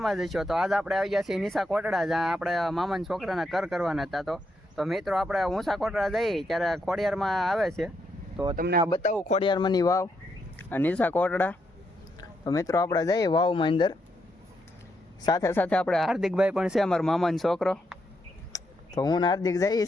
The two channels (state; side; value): normal; both; correlation 0.80